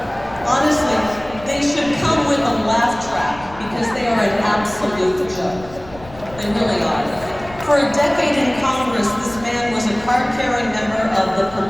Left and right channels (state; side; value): noise; left; rumble, 19 dB below the sound